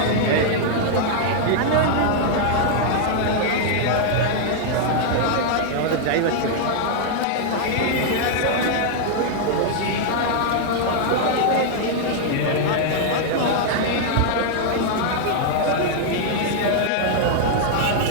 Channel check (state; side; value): different; both; correlation -0.01